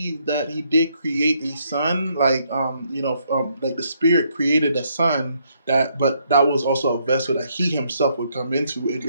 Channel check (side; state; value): both; inverted; correlation -0.72